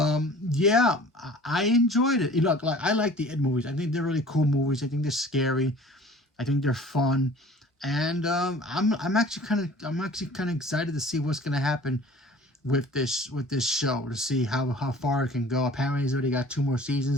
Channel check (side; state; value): both; normal; correlation 0.47